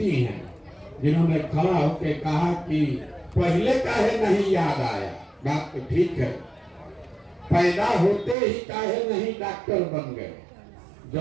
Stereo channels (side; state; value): left; drops out; at 8.3 s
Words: हैं जिन्होंने खड़ा होकर कहा कि पहले काहे नहीं याद आया। बात तो ठीक है, पैदा होते ही काहे नहीं डॉक्टर बन गए।